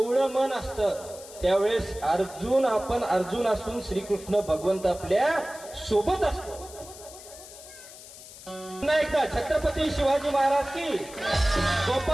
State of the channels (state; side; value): noise; left; hiss, 17 dB below the sound